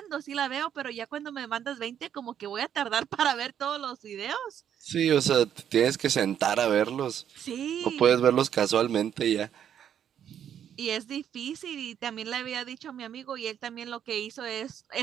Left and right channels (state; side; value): quieter; left; 9.4 dB